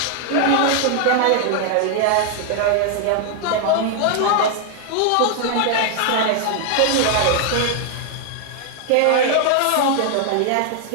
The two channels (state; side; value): different; both; correlation 0.00